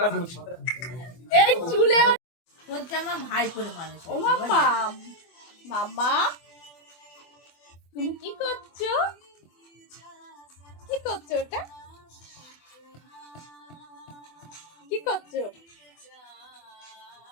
মুছে। এই চুলে তোর জামা ভাই করে মানুষ। ও মাম্মা, মাম্মা তুমি কি করছো? কি করছো ওটা? কি করছো?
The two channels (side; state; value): right; late; 24 ms